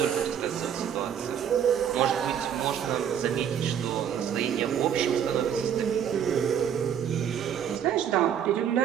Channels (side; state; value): left; quieter; 8.8 dB